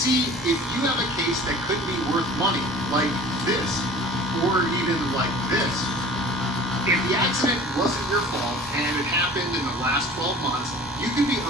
if you have a case that could be worth money, like this, or even like this. If the accident wasn't your fault and it happened in the last 12 months, you could be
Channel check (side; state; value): both; normal; correlation 0.44